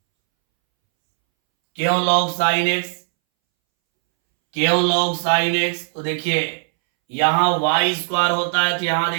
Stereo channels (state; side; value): silent; left; 65 dB below the other